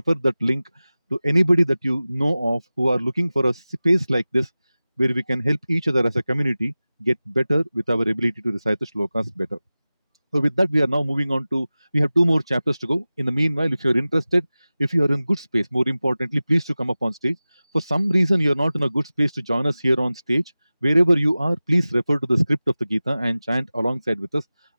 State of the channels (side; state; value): both; inverted; correlation -0.97